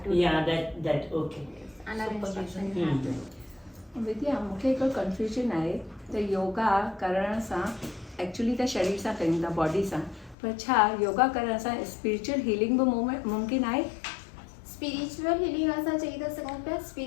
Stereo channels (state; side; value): drops out; right; at 10.4 s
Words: to. या that okay Under instruction you have to. विद्या मूंखे हिकु कंफ्यूजन आहे त योगा करण सां एक्चुअली त शरीर सां कयूं था बॉडी सां पर छा योगा करण सां स्पिरिचुअल हीलिंग बि मुमकिन आहे स्पिरिचुअल हीलिंग असां चई था सघूं पिया